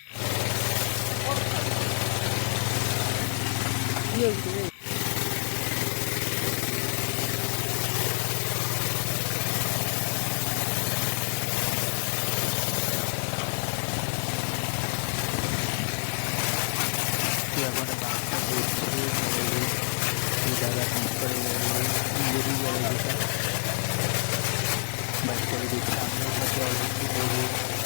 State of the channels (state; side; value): silent; right; digital silence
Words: কি হয়েছে রে? তো এখন বাইকটা ধুচ্ছে গ্যারেজে। এই দাদা কাজ করে গ্যারেজে, নিজেরই গ্যারেজ এটা। বাইকটাকে দিচ্ছে, আমিও সাথে অল্প একটু দেবো।